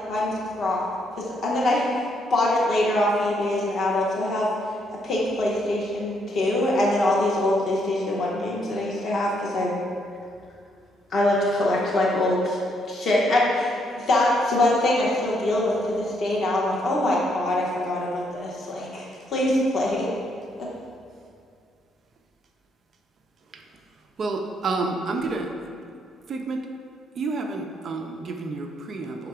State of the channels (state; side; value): normal; both; correlation 0.73